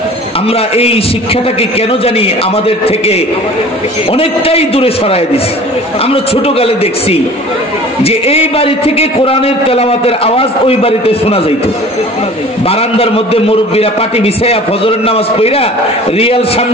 আমরা এই শিক্ষাটাকে কেন জানি আমাদের থেকে অনেকটাই দূরে সরায় দিছি। আমরা ছোটকালে দেখছি যে এই বাড়ি থেকে কোরআনের তেলাওয়াতের আওয়াজ ওই বাড়িতে শোনা যাইত। বারান্দার মধ্যে মুরব্বীরা পাটি বিছাইয়া ফজরের নামাজ পড়া রিয়াল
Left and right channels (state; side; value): normal; both; correlation 0.44